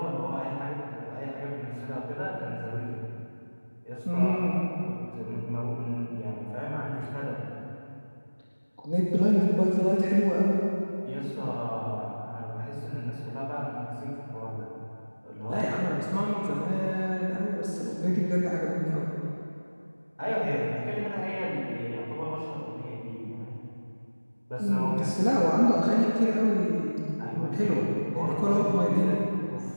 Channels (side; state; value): both; inverted; correlation -1.00